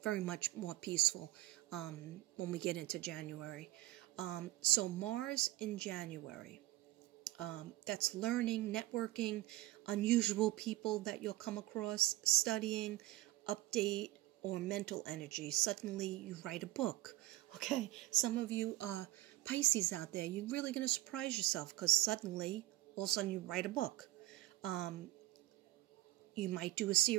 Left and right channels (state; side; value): quieter; left; 17.4 dB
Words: very much more peaceful when we get into January. So Mars in January. That's learning, networking, unusual people that you'll come across, studying, update, or mental energy. Suddenly you write a book. Okay, some of you Pisces out there, you're really going to surprise yourself because suddenly, all of a sudden you write a book. You might do a